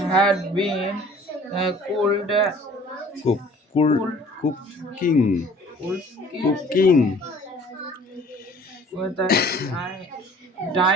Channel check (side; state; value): both; normal; correlation 0.51